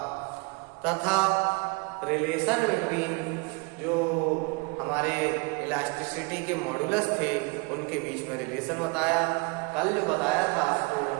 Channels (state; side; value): quieter; left; 29.7 dB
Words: तथा रिलेशन बिटवीन जो हमारे इलास्टिसिटी के मॉडुलस थे उनके बीच में रिलेशन बताया। कल जो बताया था उसको